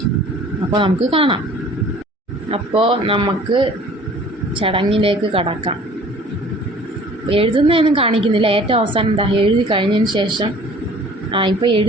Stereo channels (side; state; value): both; normal; correlation 0.49